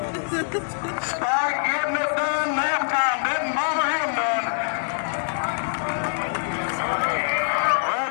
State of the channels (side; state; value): right; silent; digital silence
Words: this. Spike getting it done. Nap time didn't bother him none.